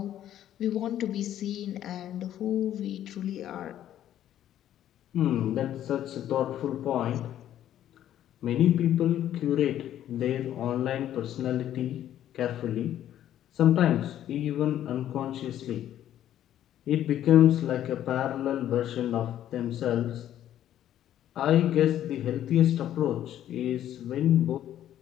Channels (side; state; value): right; quieter; 11.6 dB